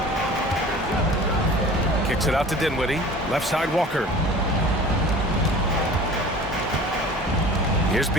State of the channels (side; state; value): both; normal; correlation 0.42